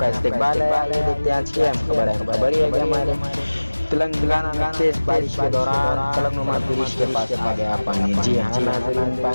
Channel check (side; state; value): both; inverted; correlation -1.00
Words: इस्तकबाल है। आइए देखते हैं आज की अहम खबर है। खबर ये है कि हमारे तेलंगाना में तेज बारिश के दौरान फलकनुमा ब्रिज के पास आ गया पानी। जी हाँ नाज़रीन,